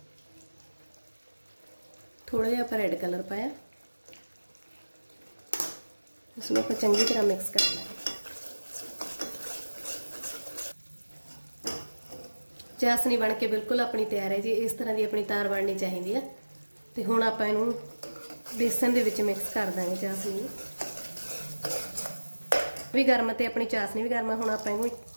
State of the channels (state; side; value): inverted; both; correlation -1.00